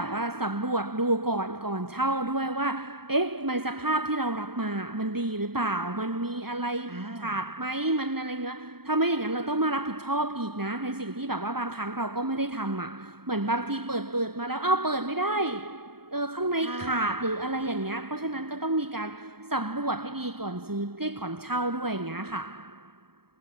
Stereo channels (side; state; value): left; late; 0.95 ms